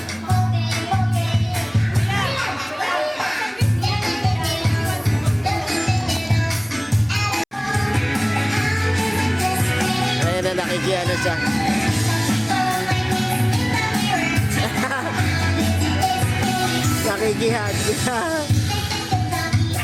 Ayan na, nakikiano siya. Nakikihag.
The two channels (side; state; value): both; identical; correlation 1.00